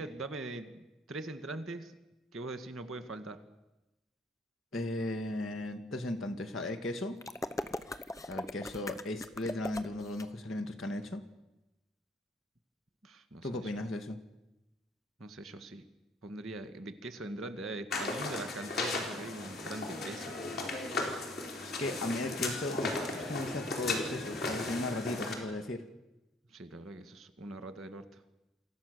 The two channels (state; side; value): normal; both; correlation 0.60